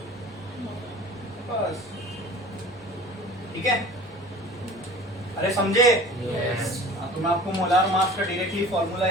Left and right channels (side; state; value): both; normal; correlation 0.42